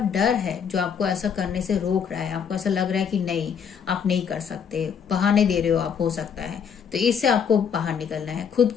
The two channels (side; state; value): right; quieter; 7.2 dB